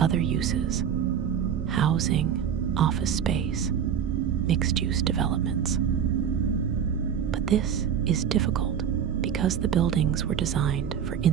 uses: housing, office space, mixed-use developments. But this is difficult because the buildings were designed for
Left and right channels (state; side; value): quieter; left; 8.4 dB